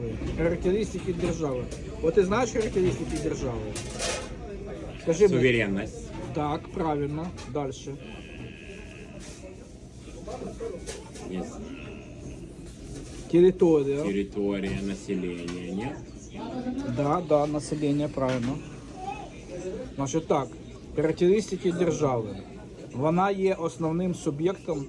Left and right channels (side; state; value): both; identical; correlation 1.00